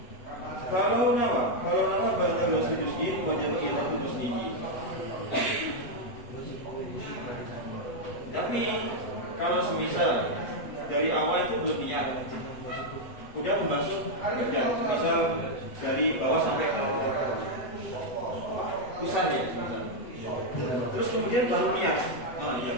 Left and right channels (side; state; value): right; late; 8.0 ms